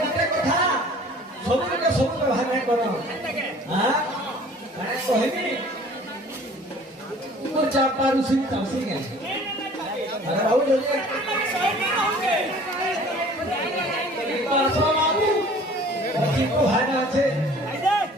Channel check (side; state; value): both; normal; correlation 0.49